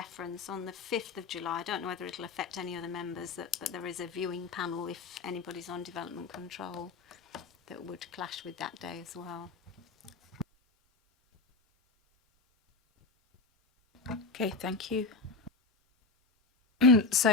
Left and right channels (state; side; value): quieter; right; 3.8 dB